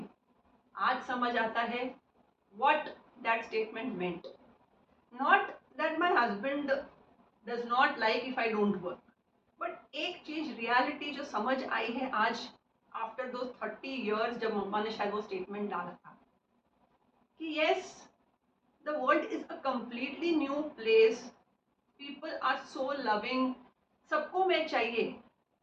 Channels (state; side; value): identical; both; correlation 1.00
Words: आज समझ आता है what that statement meant. Not that my husband does not like if I don't work, but एक चीज रियलिटी जो समझ आई है आज आफ्टर दो 30 years जब मम्मा ने शायद वो स्टेटमेंट डाला था कि yes the world is a completely new place, people are so loving, सबको मैं चाहिए.